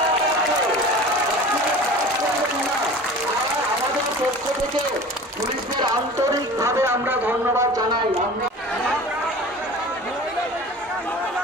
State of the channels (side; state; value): both; normal; correlation 0.39